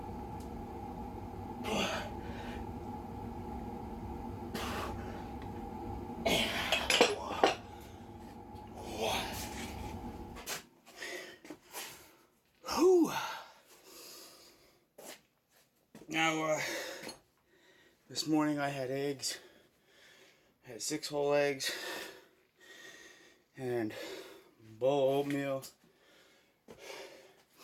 now this morning I had eggs. I had 6 whole eggs and a bowl of oatmeal.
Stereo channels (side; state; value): both; identical; correlation 1.00